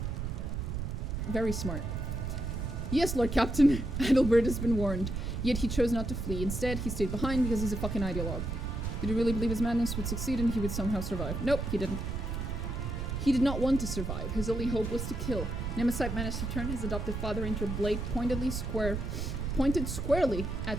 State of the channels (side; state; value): right; noise; rumble, 3 dB below the sound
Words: very smart. Yes, Lord Captain, Adalbert has been warned. Yet he chose not to flee. Instead, he stayed behind because he's a fucking ideologue. Did he really believe his madness would succeed and he would somehow survive? Nope, he didn't. He did not want to survive. His only hope was to kill. Nemesite managed to turn his adopted father into a blade pointed squarely